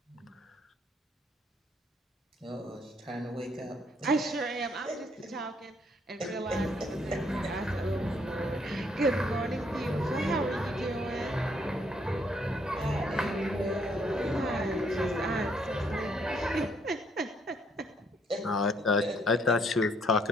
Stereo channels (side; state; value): both; normal; correlation 0.69